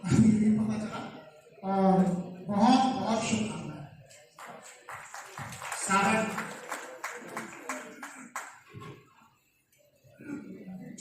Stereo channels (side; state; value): both; identical; correlation 1.00